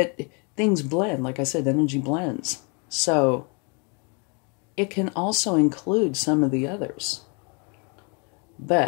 things blend. Like I said, energy blends. So it can also include some of the others.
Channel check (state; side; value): quieter; right; 34.9 dB